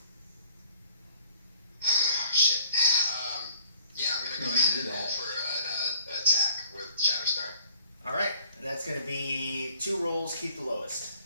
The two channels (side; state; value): both; inverted; correlation -0.56